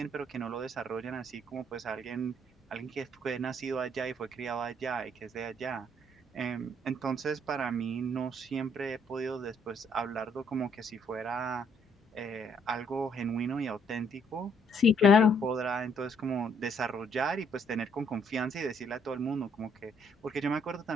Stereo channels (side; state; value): both; normal; correlation 0.67